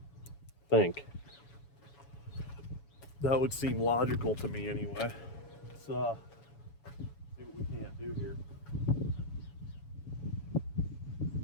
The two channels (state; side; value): late; right; 7.1 ms